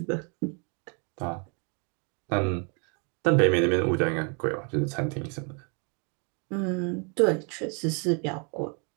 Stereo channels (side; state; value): left; quieter; 36.5 dB